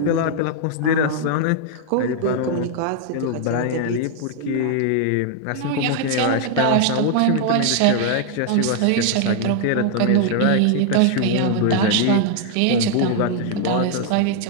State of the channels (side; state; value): both; different; correlation 0.00